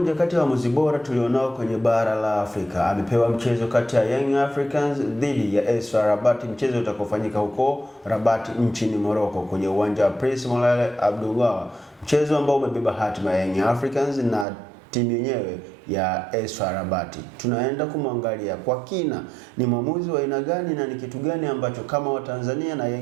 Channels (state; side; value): drops out; left; at 14.5 s